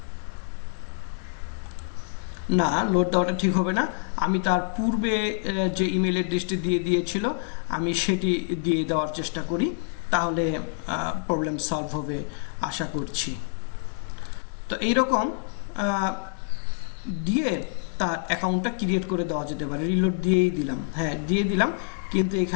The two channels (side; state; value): right; silent; digital silence